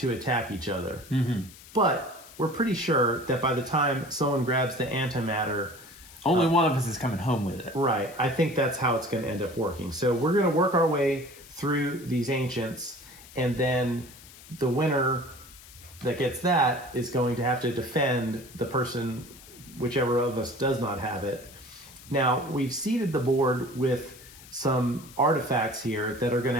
attack each other. But we're pretty sure that by the time someone grabs the antimatter, only one of us is coming home with it. Right. I think that's how it's going to end up working. So we're going to work our way through these ancients, and then the winner that gets that is going to have to defend the person, whichever of us does not have it. Now, we've seeded the board with some artifacts here that are going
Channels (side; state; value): left; noise; hiss, 20 dB below the sound